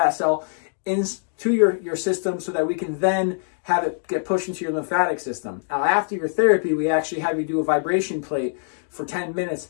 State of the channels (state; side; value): silent; right; digital silence